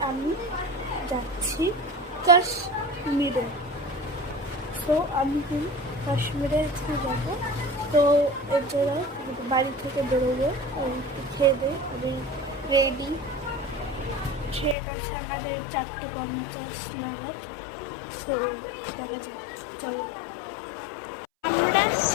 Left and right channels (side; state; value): right; drops out; at 14.8 s